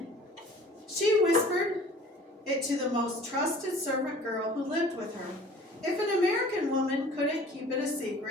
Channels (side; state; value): both; normal; correlation 0.48